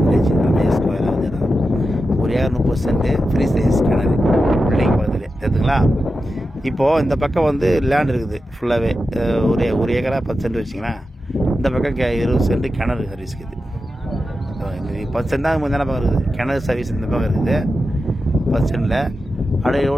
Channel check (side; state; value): both; normal; correlation 0.91